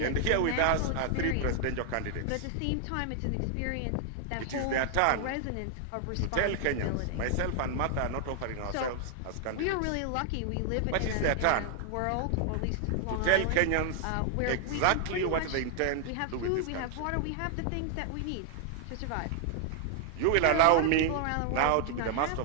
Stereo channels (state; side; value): different; both; correlation 0.00